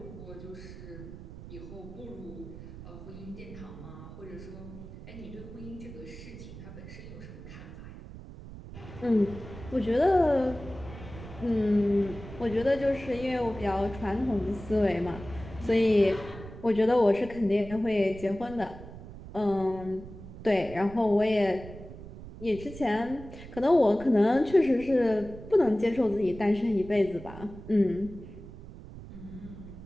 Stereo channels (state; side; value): noise; right; rumble, 14 dB below the sound